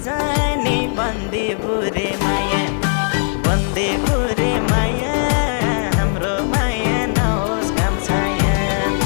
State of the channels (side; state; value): right; silent; digital silence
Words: बन्दी बुरे माया बन्दी बुरे माया हाम्रो माया नहोस् काम छाया